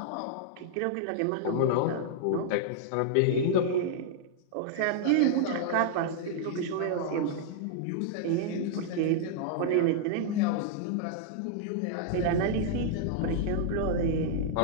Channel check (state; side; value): different; both; correlation -0.01